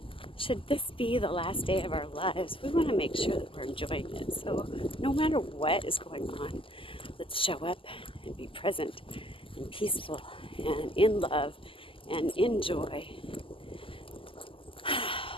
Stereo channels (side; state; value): right; late; 0.25 ms